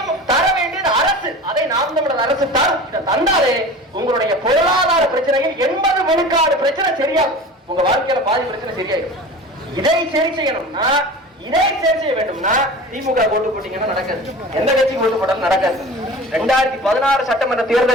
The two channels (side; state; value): both; normal; correlation 0.36